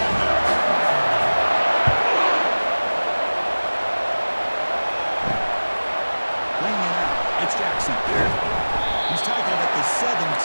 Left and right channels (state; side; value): inverted; both; correlation -1.00